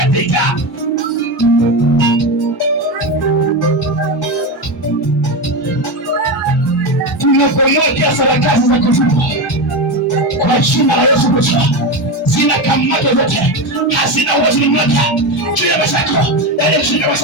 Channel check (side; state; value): both; normal; correlation 0.16